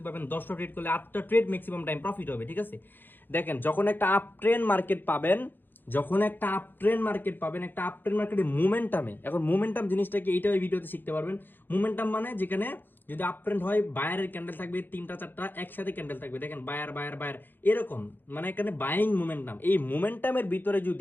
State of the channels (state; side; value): late; right; 0.094 ms